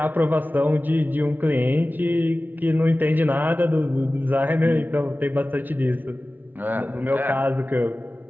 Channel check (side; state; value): left; late; 0.085 ms